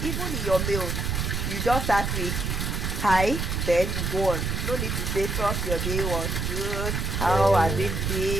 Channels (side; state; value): right; noise; rumble, 1 dB below the sound